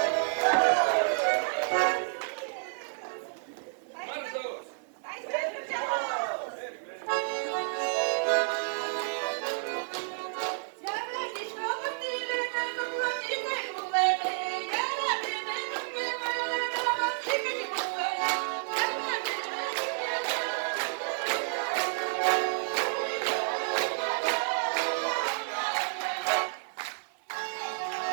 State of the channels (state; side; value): silent; left; 57 dB below the other